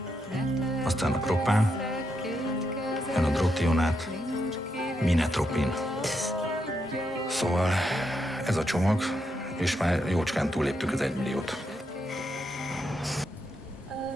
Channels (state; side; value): normal; both; correlation 0.81